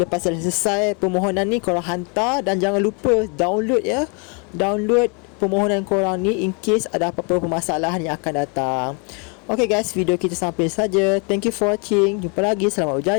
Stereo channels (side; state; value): right; quieter; 34.4 dB